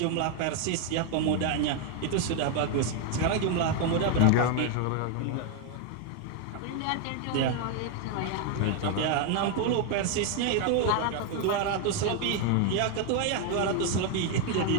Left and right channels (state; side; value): different; both; correlation 0.01